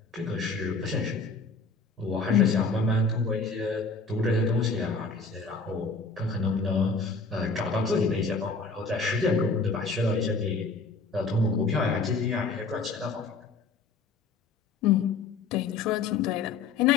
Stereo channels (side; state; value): right; quieter; 4.2 dB